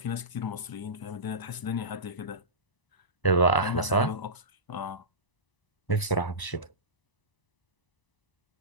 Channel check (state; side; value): late; right; 1.0 ms